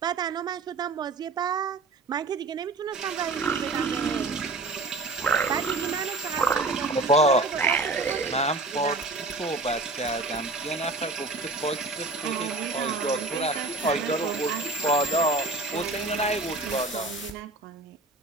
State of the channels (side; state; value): left; quieter; 3.2 dB